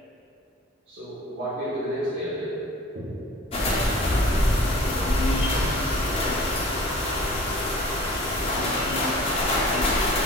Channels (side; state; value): both; normal; correlation 0.45